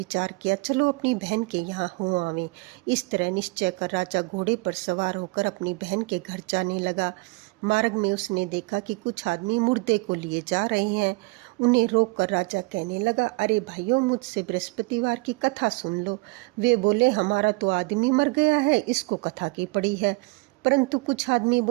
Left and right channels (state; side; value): quieter; left; 26.8 dB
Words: किया, चलो अपनी बहन के यहाँ हो आवें। इस तरह निश्चय कर राजा घोड़े पर सवार होकर अपनी बहन के घर जाने लगा। मार्ग में उसने देखा कि कुछ आदमी मुर्दे को लिए जा रहे हैं। उन्हें रोककर राजा कहने लगा, अरे भाइयों, मुझसे बृहस्पतिवार की कथा सुन लो। वे बोले, हमारा तो आदमी मर गया है, इसको कथा की पड़ी है। परंतु कुछ आदमी